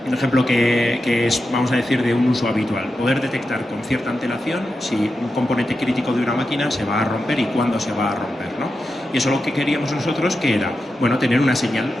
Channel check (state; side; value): normal; both; correlation 0.89